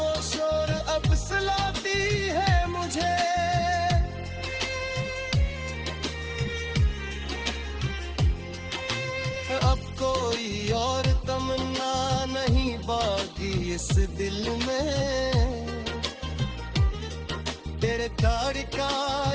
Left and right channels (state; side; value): identical; both; correlation 1.00